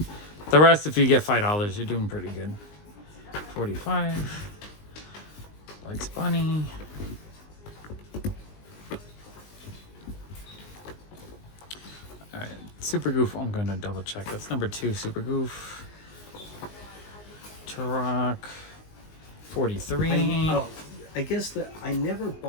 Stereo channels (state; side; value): late; right; 19 ms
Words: The rest, if you get $5, you're doing pretty good. 45. Likes Bunny. Alright, Super Goof, I'm gonna double check. That's #2, Super Goof. Turok, 43. I guess that I never